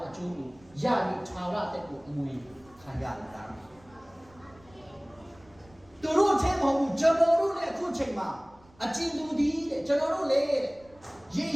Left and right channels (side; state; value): right; noise; rumble, 27 dB below the sound